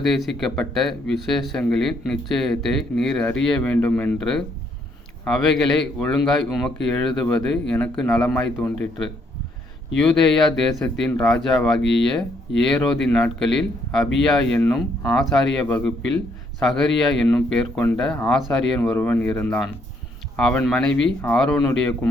விசேஷங்களின் நிச்சயத்தை நீர் அறிய வேண்டுமென்று அவைகளை ஒழுங்காய் உமக்கு எழுதுவது எனக்கு நலமாய் தோன்றிற்று. யூதேயா தேசத்தின் ராஜாவாகிய ஏரோதின் நாட்களில் அபியா என்னும் ஆசாரிய வகுப்பில் சகரியா என்னும் பேர் கொண்ட ஆசாரியன் ஒருவன் இருந்தான். அவன் மனைவி ஆரோனுடைய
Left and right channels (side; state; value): both; normal; correlation 0.71